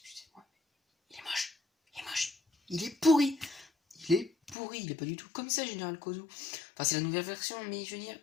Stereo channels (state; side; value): drops out; right; at 4.5 s